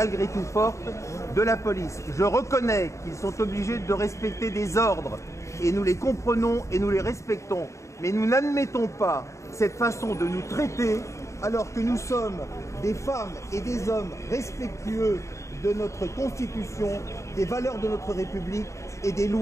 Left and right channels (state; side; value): late; right; 0.14 ms